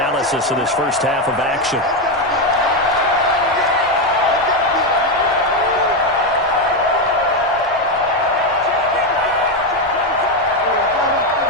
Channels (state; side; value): normal; both; correlation 0.08